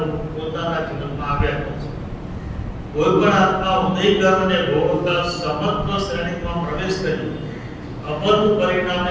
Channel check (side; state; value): both; identical; correlation 1.00